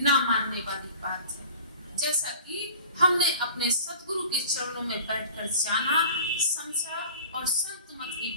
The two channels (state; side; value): inverted; both; correlation -0.43